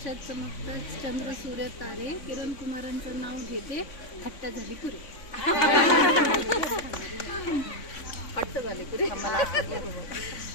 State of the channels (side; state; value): right; late; 3.5 ms